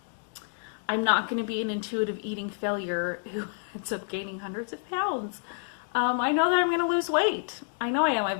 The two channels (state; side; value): silent; right; digital silence